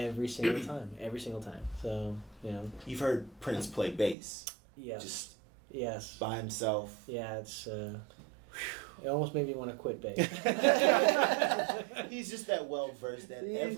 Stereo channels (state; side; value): drops out; left; at 4.2 s